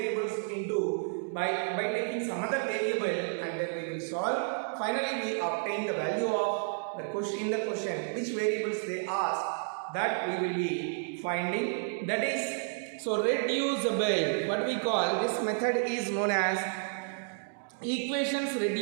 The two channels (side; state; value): left; silent; digital silence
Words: into by taking some other variable, and then we will solve. Finally we obtain the value of the question which variables they ask, that we will be finding. That is, so reducible, what we call this method is known as equations